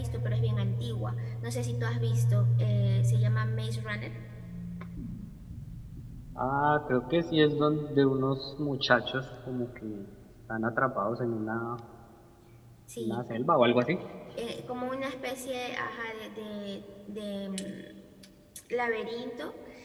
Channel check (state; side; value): identical; both; correlation 1.00